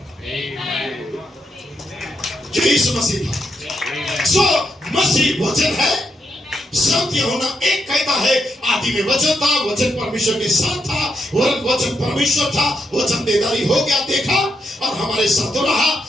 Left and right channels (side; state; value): both; normal; correlation 0.81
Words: यीशु मसीह था। सो मसीह वचन है। सत्य होना एक कहता है, आदि में वचन था, वचन परमेश्वर के साथ था, वचन परमेश्वर था, वचन देदारी हो गया, देखा और हमारे साथ रहा।